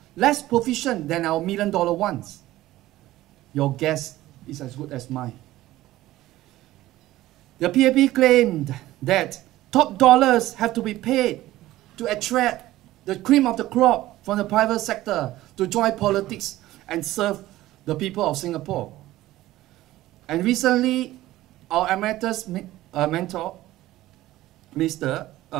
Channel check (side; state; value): left; quieter; 15.9 dB